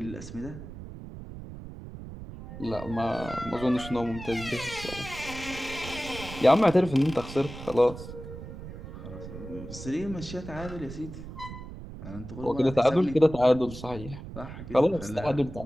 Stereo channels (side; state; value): right; noise; rumble, 12 dB below the sound